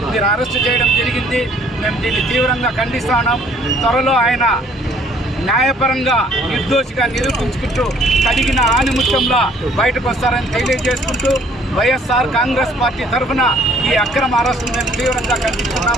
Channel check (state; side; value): normal; both; correlation 0.59